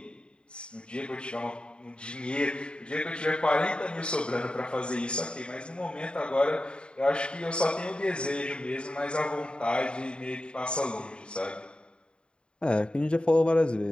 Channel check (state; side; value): late; right; 0.052 ms